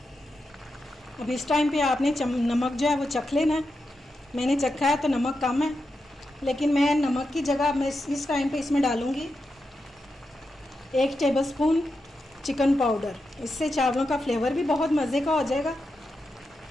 अब इस टाइम पे आपने नमक जो है वो चख लेना है। मैंने चखा है तो नमक कम है, लेकिन मैं नमक की जगह मैं इस टाइम पे इसमें डालूँगी 1 टेबलस्पून चिकन पाउडर। इससे चावलों का फ्लेवर भी बहुत मज़े का हो जाएगा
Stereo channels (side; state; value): both; normal; correlation 0.88